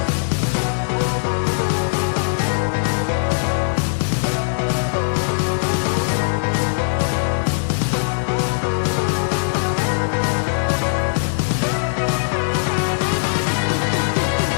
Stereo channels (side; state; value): right; silent; digital silence